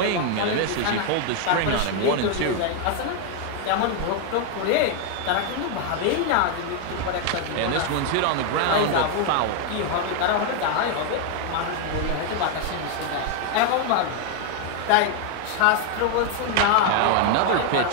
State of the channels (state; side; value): different; both; correlation 0.01